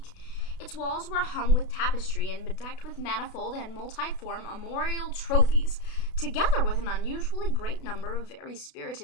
Its walls were hung with tapestry and bedecked with manifold and multiform armorial trophies, together with an unusually great number of very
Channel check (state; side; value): late; right; 32 ms